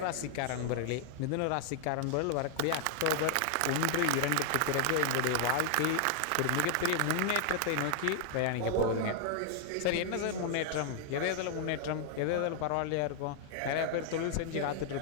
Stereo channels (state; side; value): different; both; correlation 0.00